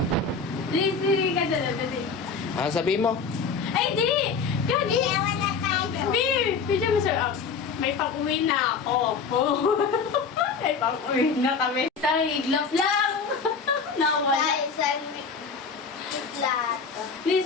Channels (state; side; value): quieter; right; 5.3 dB